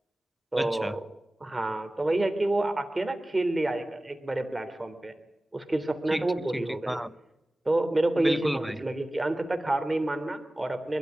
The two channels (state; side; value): normal; both; correlation 0.97